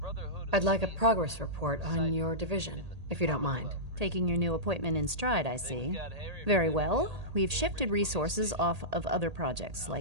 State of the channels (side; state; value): left; late; 1.8 ms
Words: of I'd like a Steel progress report on your division, if you don't mind. Taking your new appointment in stride, I see. Very well. We've shifted resources off of other projects,